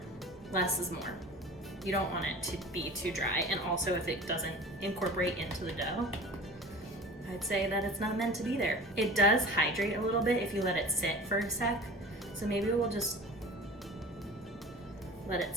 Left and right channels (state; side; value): normal; both; correlation 0.38